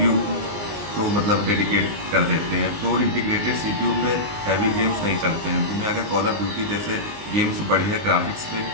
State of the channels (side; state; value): left; late; 20 ms